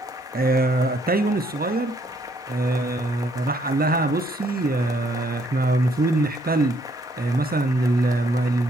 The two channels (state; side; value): normal; both; correlation 0.68